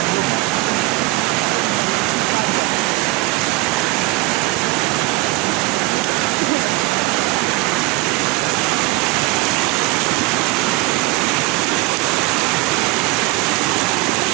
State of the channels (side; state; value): left; quieter; 19.9 dB